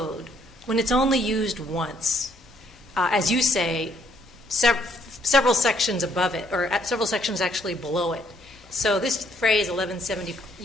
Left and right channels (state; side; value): normal; both; correlation 0.68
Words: when it's only used once? As you say, several sections above it, or several sections actually below it. So this phrase 1170